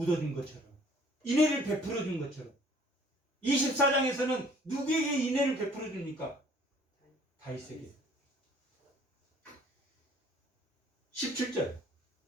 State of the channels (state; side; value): normal; both; correlation 0.56